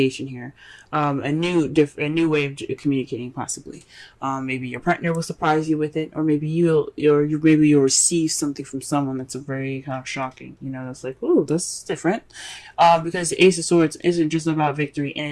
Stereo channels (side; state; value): both; identical; correlation 1.00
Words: here. A new way of communicating, possibly. Maybe your partner will surprise you with it, or maybe you'll receive something from someone that's a very kind of shocking. That's like, ooh, that's different. Because the Ace of Swords isn't just about victory,